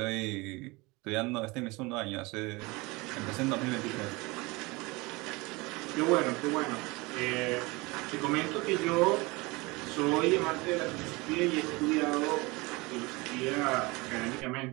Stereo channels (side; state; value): left; quieter; 24.3 dB